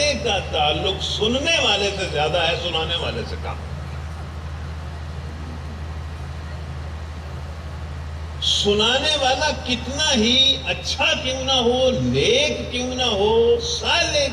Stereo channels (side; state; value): both; identical; correlation 1.00